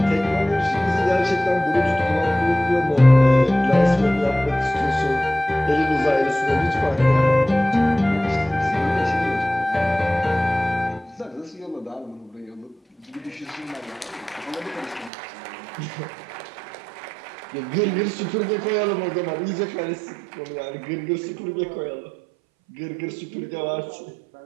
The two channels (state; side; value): drops out; left; at 15.1 s